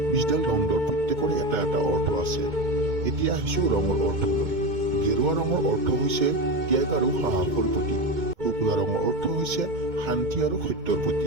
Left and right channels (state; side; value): late; left; 2.2 ms